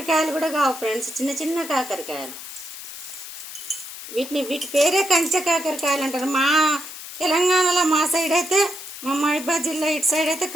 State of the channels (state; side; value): noise; left; hiss, 12 dB below the sound